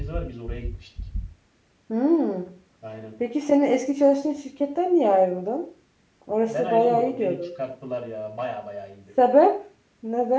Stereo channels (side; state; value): both; identical; correlation 1.00